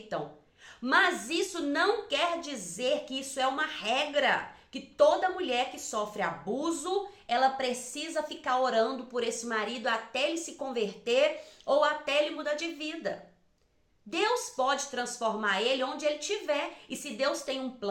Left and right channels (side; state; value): both; identical; correlation 1.00